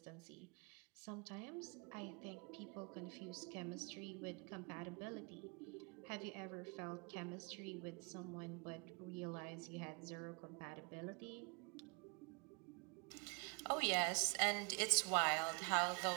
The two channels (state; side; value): quieter; left; 32.0 dB